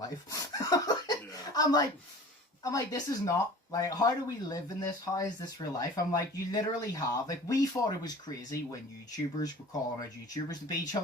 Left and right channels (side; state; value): both; normal; correlation 0.42